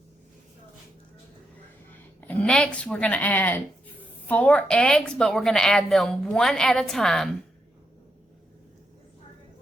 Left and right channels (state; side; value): normal; both; correlation 0.82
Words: And next we're going to add 4 eggs, but we're going to add them 1 at a time,